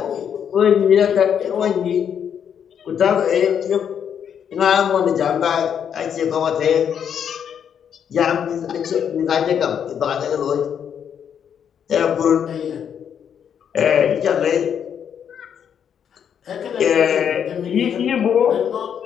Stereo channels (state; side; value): quieter; right; 8.3 dB